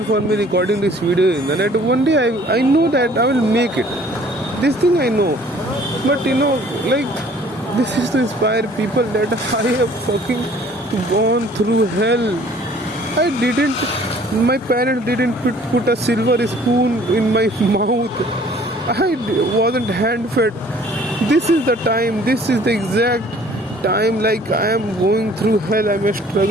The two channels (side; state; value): both; normal; correlation 0.54